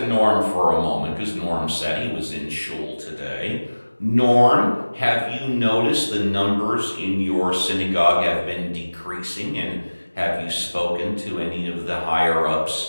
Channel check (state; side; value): inverted; both; correlation -1.00